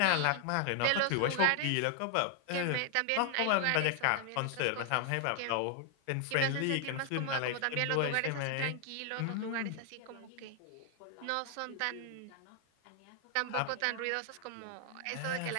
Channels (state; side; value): different; both; correlation 0.00